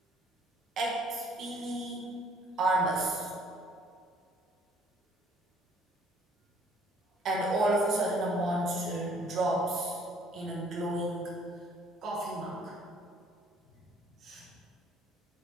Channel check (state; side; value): normal; both; correlation 0.60